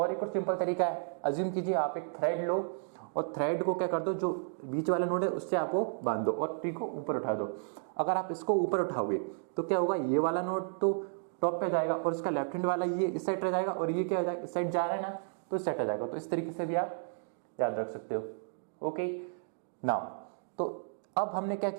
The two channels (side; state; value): left; silent; digital silence